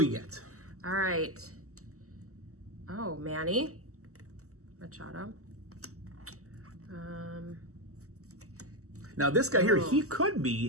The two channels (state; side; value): late; left; 0.65 ms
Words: get? All right. Oh, Manny Machado. Now this guy here, he could